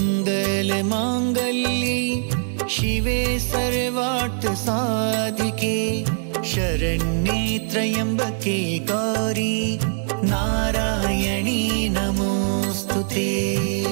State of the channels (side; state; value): left; silent; digital silence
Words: शिवे सर्वार्थसाधिके शरण्ये त्र्यम्बके गौरी नारायणी नमोऽस्तुते।